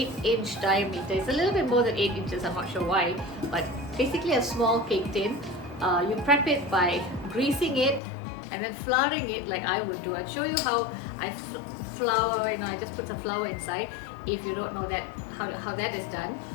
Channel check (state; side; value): drops out; right; at 8.0 s